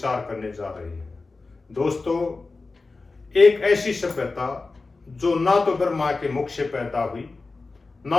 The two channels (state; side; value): quieter; right; 3.8 dB